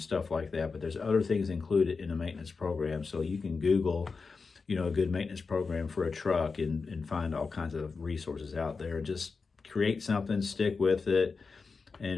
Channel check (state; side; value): quieter; right; 4.6 dB